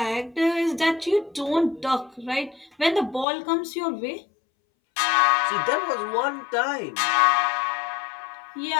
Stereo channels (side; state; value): right; drops out; at 3.2 s